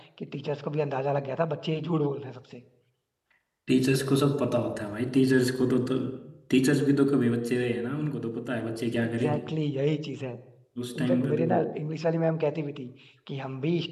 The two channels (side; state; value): both; identical; correlation 1.00